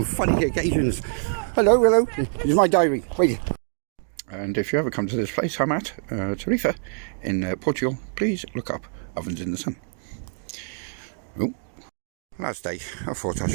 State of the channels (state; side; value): silent; left; 62 dB below the other